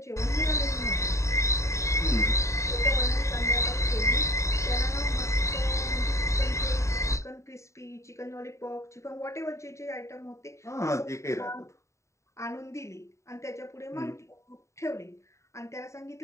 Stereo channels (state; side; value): late; right; 0.14 ms